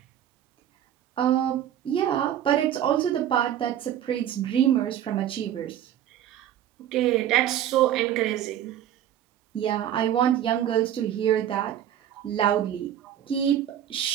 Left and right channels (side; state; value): left; quieter; 10.8 dB